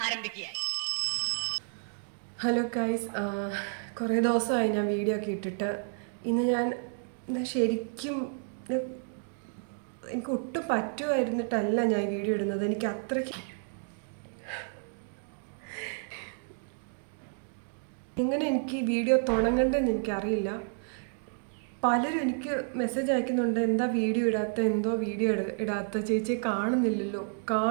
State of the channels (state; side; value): silent; left; 57 dB below the other